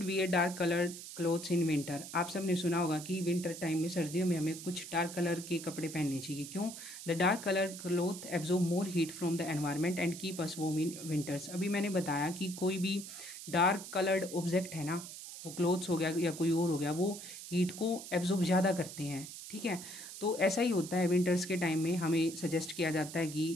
wear dark coloured clothes in winter. आप सबने सुना होगा कि विंटर टाइम में, सर्दियों में हमें कुछ डार्क कलर के कपड़े पहनने चाहिए। क्यों? The dark coloured cloth absorb more heat from the environment and keep us warm in winters. अभी मैंने बताया कि कोई भी डार्क कलर्ड ऑब्जेक्ट है ना, वो क्लोथ्स हो गया या कोई और हो गया, वो हीट को एब्जॉर्ब ज़्यादा करते हैं। ठीक है, तो ऐसा ही होता है विंटर्स के टाइम में। हमें सजेस्ट किया जाता है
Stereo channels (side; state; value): right; noise; hiss, 11 dB below the sound